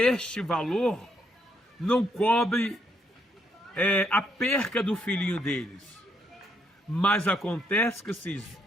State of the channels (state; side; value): normal; both; correlation 0.74